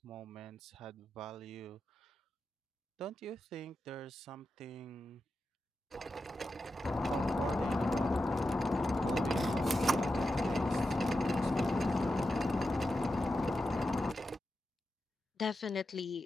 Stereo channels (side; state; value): both; normal; correlation 0.90